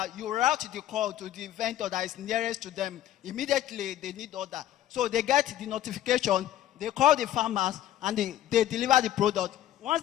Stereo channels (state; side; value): quieter; right; 12.7 dB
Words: you route the call to the vendor that is nearest to them. Immediately, they need order. So they get the notification, they call the farmers, and they deliver the product. Once